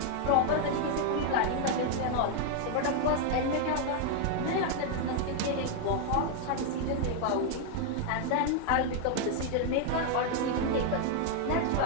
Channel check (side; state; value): both; different; correlation 0.00